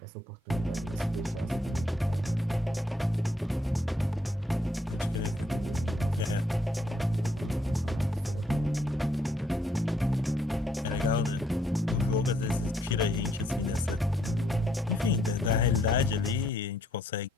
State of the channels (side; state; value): both; normal; correlation 0.70